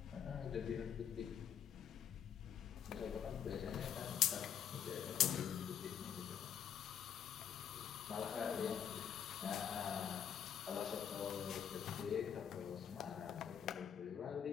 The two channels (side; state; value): right; quieter; 8.6 dB